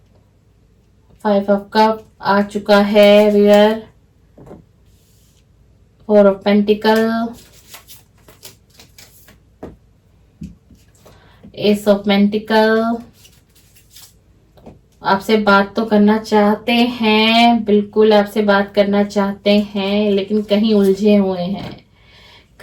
फाइव ऑफ कप आ चुका है viewer, four of pentacle, ace of pentacle. आपसे बात तो करना चाहते हैं, बिल्कुल आपसे बात करना चाहते हैं, लेकिन कहीं उलझे हुए हैं।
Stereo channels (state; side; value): identical; both; correlation 1.00